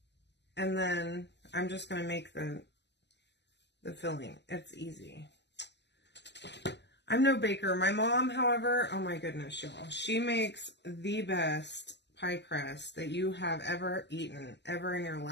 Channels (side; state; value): right; late; 0.50 ms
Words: then I'm just going to make the filling. It's easy. I'm no baker. My mom, however, oh my goodness, y'all. She makes the best pie crust that you have ever eaten, ever in your